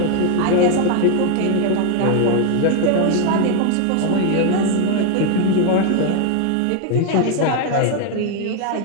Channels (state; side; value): different; both; correlation 0.01